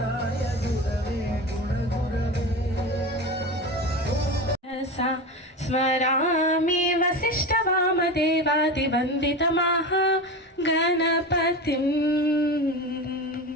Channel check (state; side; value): normal; both; correlation 0.25